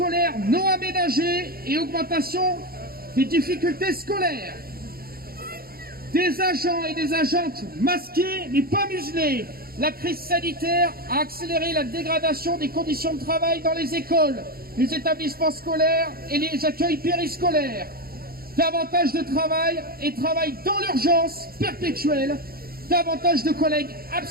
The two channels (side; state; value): left; late; 0.44 ms